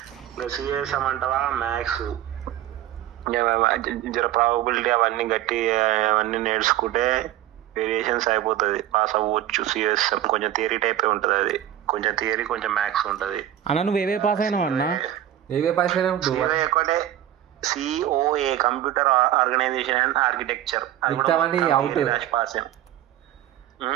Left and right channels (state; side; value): quieter; left; 12.3 dB